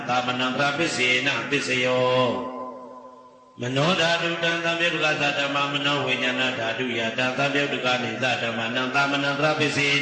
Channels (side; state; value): both; identical; correlation 1.00